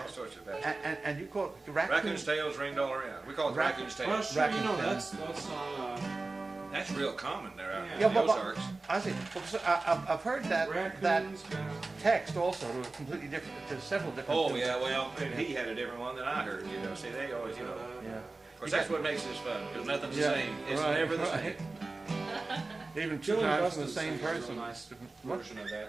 sorts of that. And you called raccoon. Raccoon's tails ringed all around. We call it raccoon's tails. Well, sure, you know, that's on, That's real common there out Yeah, in the but Ozarks. I see. Because I've heard that text also to a completely different, to several different. Oh, yeah, well, he had a different one than I heard, you know. See, they always, you know. Yeah. Of course, that's what makes this fun, because nothing's the Yeah, same. It's right, never the right. same. Even two Dylan times from Buston the same sings a real person. nice version of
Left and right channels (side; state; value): left; quieter; 3.4 dB